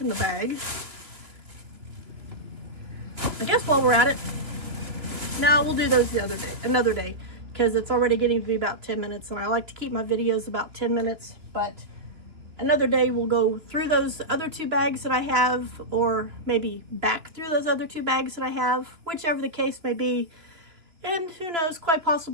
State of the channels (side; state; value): left; late; 2.9 ms